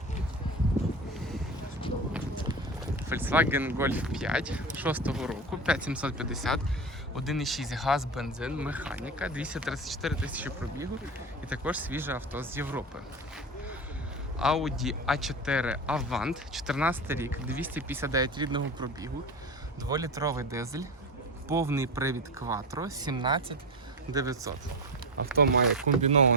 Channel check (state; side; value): normal; both; correlation 0.23